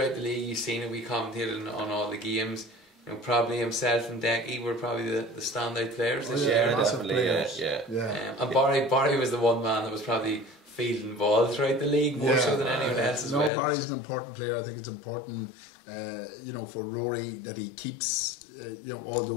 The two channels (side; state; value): right; drops out; at 13.5 s